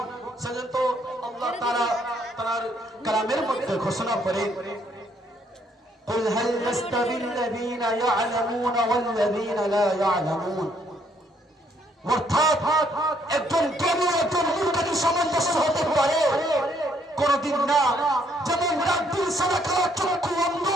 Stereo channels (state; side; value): normal; both; correlation 0.69